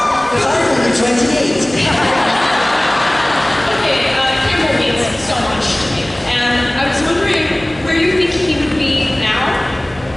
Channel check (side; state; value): right; noise; hum, 22 dB below the sound